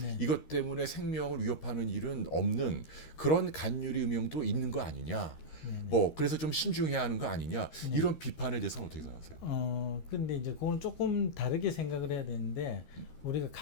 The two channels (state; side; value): late; right; 13 ms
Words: 네. 이것 때문에 생명을 위협하는 일은 없는 그런 간유리 음영도 있는 거 아니냐. 뭐 그래서 좀 신중해야 하는 거 아니냐. 이런 비판에 대해서는 어떻게 생각하세요? 근데 이제 그건 조금 다르게 생각을 해야 되는데 우리가